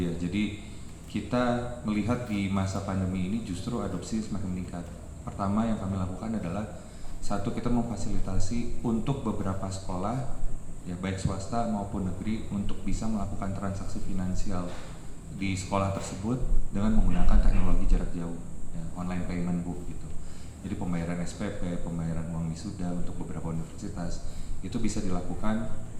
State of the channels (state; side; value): identical; both; correlation 1.00